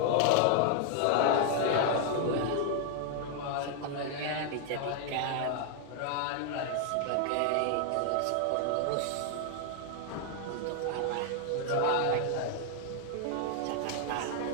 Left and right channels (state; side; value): different; both; correlation 0.00